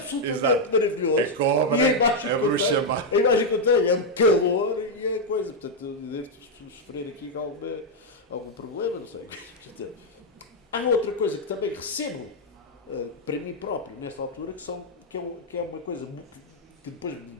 maravilhoso? A cobra, a bruxa má. A imagem que eu tenho é um calor e a coisa. Portanto, eu devo sofrer aqui algum problema, não sei. Há outra coisa que também recebo para mim próprio nesta altura, que é uma coisa que depois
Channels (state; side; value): normal; both; correlation -0.01